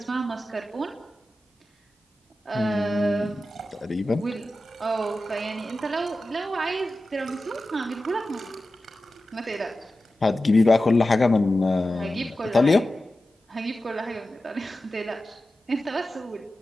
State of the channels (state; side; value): normal; both; correlation 0.94